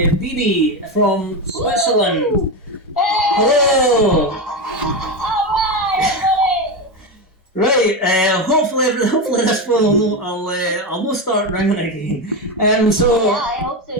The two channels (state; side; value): normal; both; correlation 0.14